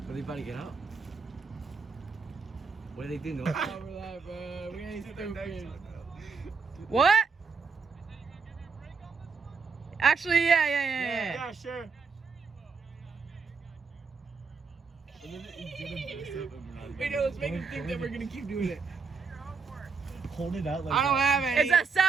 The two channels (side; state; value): left; quieter; 5.0 dB